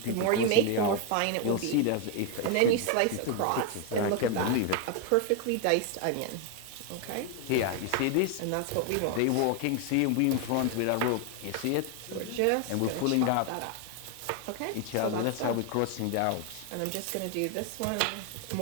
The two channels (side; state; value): both; different; correlation 0.01